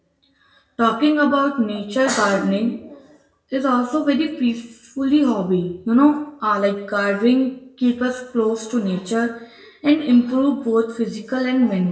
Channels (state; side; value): identical; both; correlation 1.00